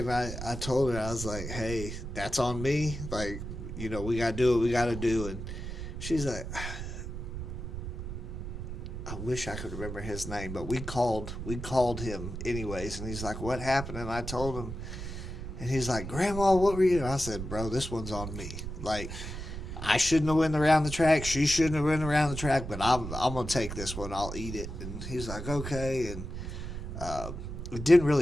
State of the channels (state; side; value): noise; right; rumble, 7 dB below the sound